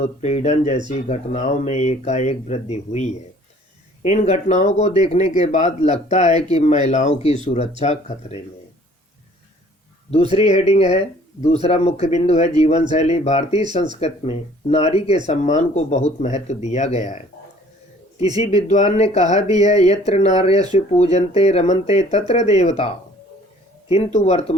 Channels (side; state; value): both; normal; correlation 0.55